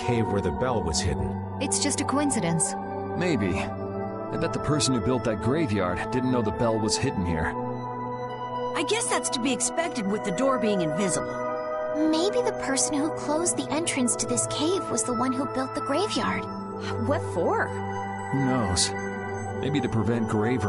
where the bell was hidden? It's just a coincidence. Maybe. I bet the person who built that graveyard didn't know the bell was hidden here. I guess that's to be expected with the door being invisible. Maybe the person who closed the entrance to this cave was the one who built the graveyard. What for? Who knows? Maybe to prevent grave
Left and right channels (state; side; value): identical; both; correlation 1.00